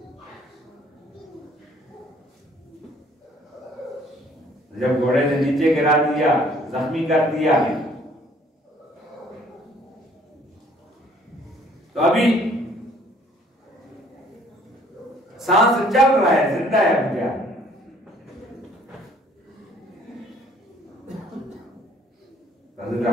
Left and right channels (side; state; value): both; normal; correlation 0.59